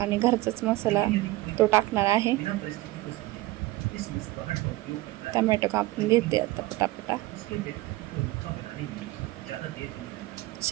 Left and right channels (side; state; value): left; quieter; 18.4 dB